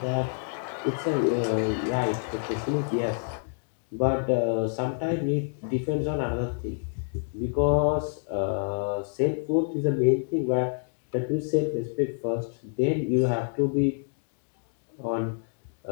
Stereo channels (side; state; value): right; silent; 60 dB below the other